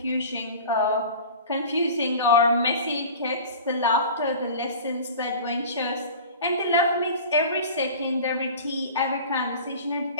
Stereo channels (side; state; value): both; inverted; correlation -0.38